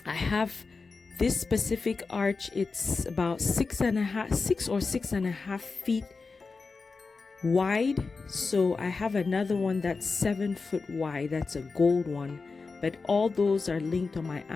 I have this specific arch. It's about 6.5 feet wide. So I have another one that's 7 foot wide. That's a gold one. But all those are linked on my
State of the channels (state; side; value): quieter; right; 4.3 dB